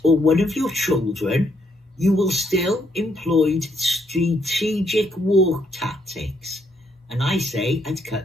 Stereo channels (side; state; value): both; normal; correlation 0.73